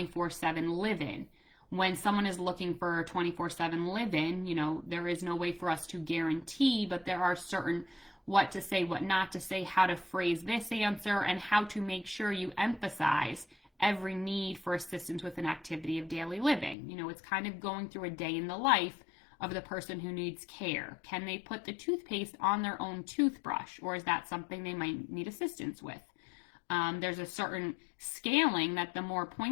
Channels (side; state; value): right; drops out; at 16.8 s